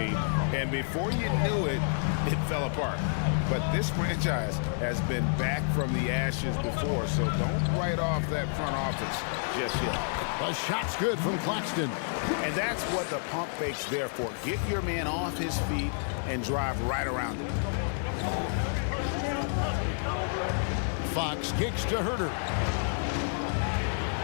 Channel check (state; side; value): silent; right; 58 dB below the other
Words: And before you knew it, it fell apart. But this franchise has been back from the ashes before, so don't write off that front office just yet. A shot's good from Claxton. And that's what the pump fake's there for. Get your man off his feet and drive right around him. Fox kicks to Herter.